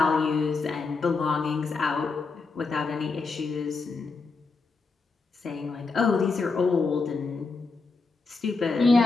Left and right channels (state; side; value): quieter; right; 4.1 dB